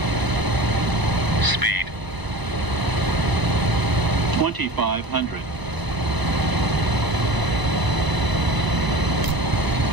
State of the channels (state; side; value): late; left; 1.0 ms